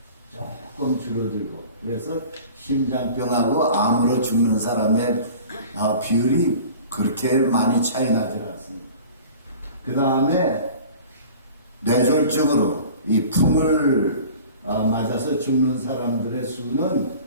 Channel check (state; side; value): inverted; both; correlation -0.43